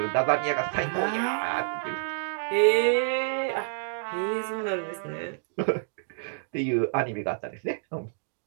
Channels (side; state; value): left; silent; digital silence